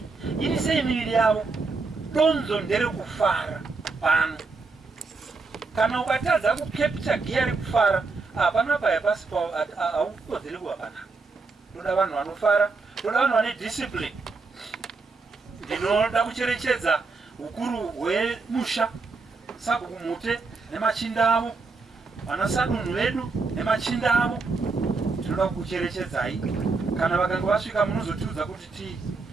ini sei miviri yavo. Donzo ndere kufara pano. Kana ukatadza kukepcha giya rekufara, hapana paya pasi haukodzeri kuva panapa. Toda vanhu vanofara, toda vanhu vane discipline. Ndinoda kucherechedza ukuru hwemusha, sabhuku mute nemachinda avo, vanasadunhu vedu nemachinda avo. Tinoda kucherechedzai. Kana vakanga vasvika munozotiudza kuti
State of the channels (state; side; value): quieter; left; 4.1 dB